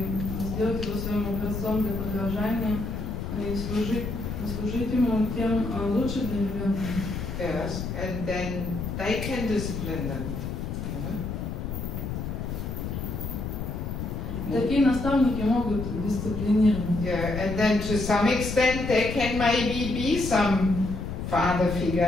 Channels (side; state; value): left; noise; rumble, 5 dB below the sound